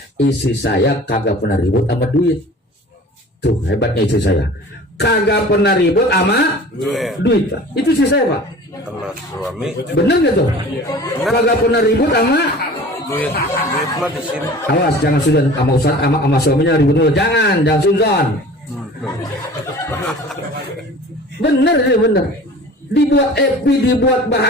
Istri saya kagak pernah ribut sama duit. Tuh hebatnya istri saya, kagak pernah ribut sama duit Pak. Itu istri saya Pak. Sama suami. Bener gak tuh? Kagak pernah ribut sama Duit mah di sini. awas jangan sudah sama ustaz sama suaminya ribut dulu. Jangan suzon. Bener. Dibuat happy, dibuat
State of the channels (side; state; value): both; normal; correlation 0.42